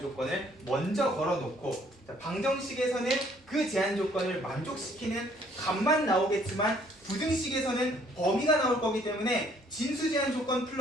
조건을 먼저 걸어놓고, 자, 방정식에서는 그 제한 조건을 만족시키는 값만 나오겠지만 부등식에서는 범위가 나올 거기 때문에 진수 제한 조건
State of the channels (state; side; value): normal; both; correlation 0.62